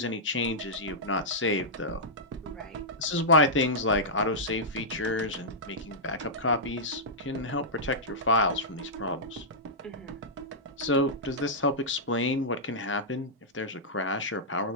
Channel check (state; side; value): normal; both; correlation -0.12